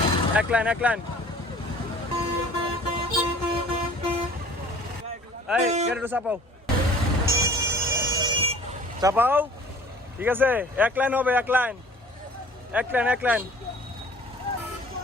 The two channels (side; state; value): both; normal; correlation 0.49